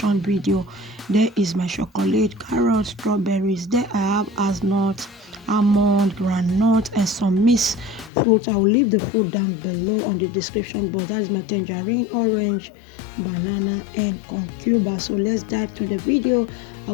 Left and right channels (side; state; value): right; drops out; at 8.1 s